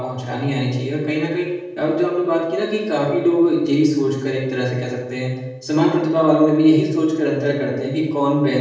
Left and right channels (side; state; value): both; identical; correlation 1.00